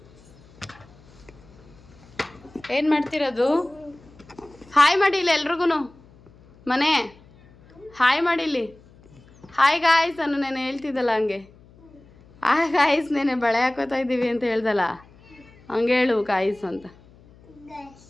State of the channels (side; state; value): left; noise; hum, 26 dB below the sound